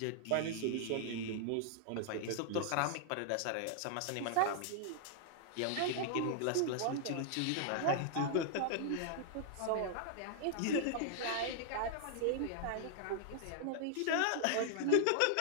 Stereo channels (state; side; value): different; both; correlation -0.01